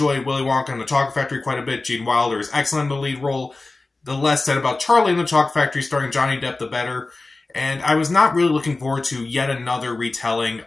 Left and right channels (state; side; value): quieter; right; 3.3 dB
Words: Willy Wonka and the Chocolate Factory quite a bit. Gene Wilder is excellent in the lead role. The less said about Charlie and the Chocolate Factory starring Johnny Depp, the better. And I was not really looking forward to yet another retelling